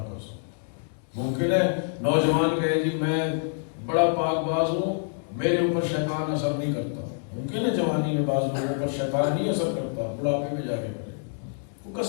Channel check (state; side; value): silent; right; digital silence